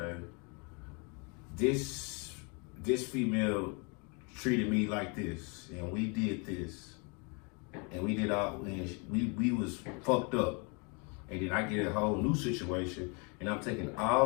this female treated me like this, and we did this, and we did all, and we was fucked up, and then I get a whole new situation, and I'm taking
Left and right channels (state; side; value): quieter; right; 33.5 dB